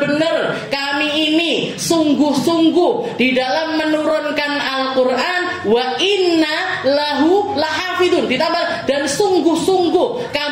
kami ini sungguh-sungguh di dalam menurunkan Al-Quran, wa inna lahu lahafidun, ditambah dan sungguh-sungguh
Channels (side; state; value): both; identical; correlation 1.00